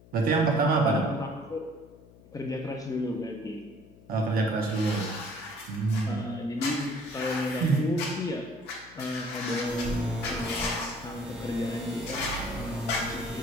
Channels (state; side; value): noise; left; hum, 23 dB below the sound